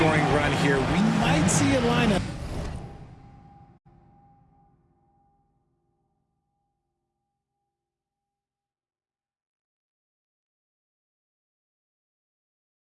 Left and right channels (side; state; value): both; identical; correlation 1.00